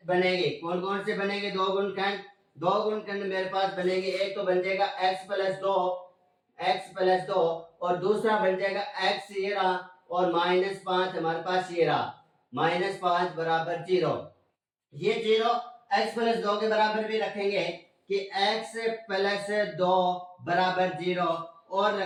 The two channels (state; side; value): identical; both; correlation 1.00